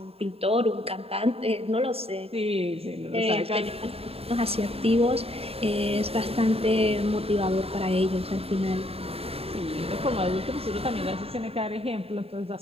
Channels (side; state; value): left; late; 0.28 ms